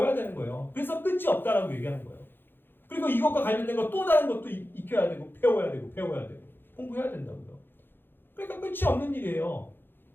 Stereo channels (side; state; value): right; late; 0.10 ms